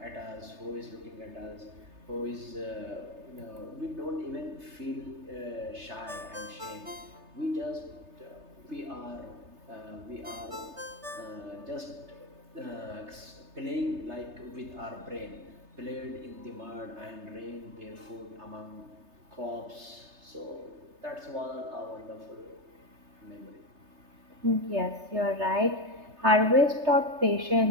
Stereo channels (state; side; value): late; left; 3.3 ms